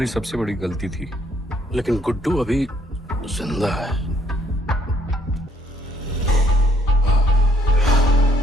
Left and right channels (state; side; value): normal; both; correlation 0.67